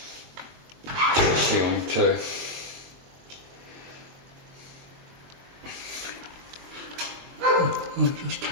to the ceiling too. I'll just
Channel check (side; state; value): left; late; 22 ms